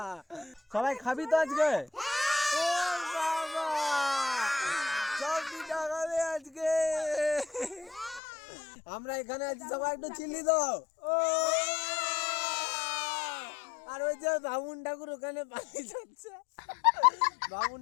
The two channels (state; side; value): drops out; right; at 8.2 s